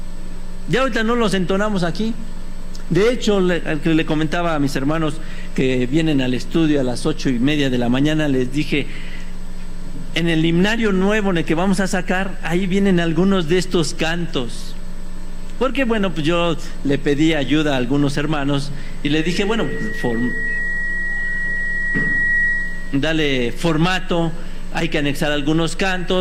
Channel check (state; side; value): identical; both; correlation 1.00